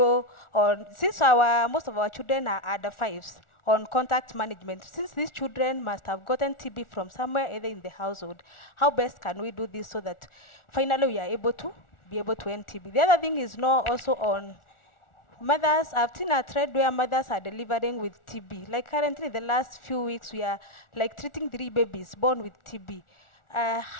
on, since most of our children are under 5s, on contact management, since these children must have gotten TB from somewhere, either in the household, how best can we do this so that finally we are able to end TB? The other thing is now also on mothers, I've seen a trend where mothers are delivering with TB. Like currently, the last few weeks, we are like treating 3 babies born with TB.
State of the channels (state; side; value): late; right; 1.4 ms